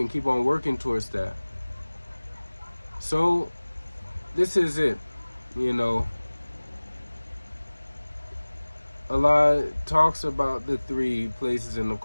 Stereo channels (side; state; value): both; inverted; correlation -1.00